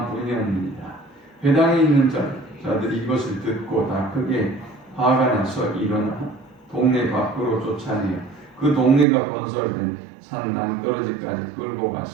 뿐이었느니라. 회당에 있는 자들이 이것을 듣고 다 크게 화가 나서 일어나 동네 밖으로 쫓아내어 그 동네가 건설된 산 낭떠러지까지 끌고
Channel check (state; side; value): drops out; left; at 9.1 s